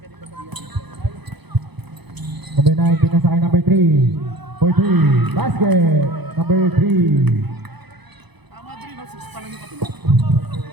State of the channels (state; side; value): late; left; 0.99 ms